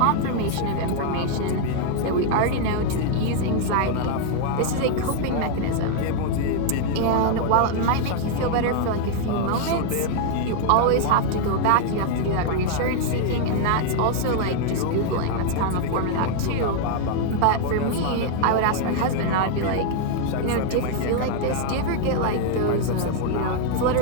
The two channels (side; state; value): both; different; correlation 0.00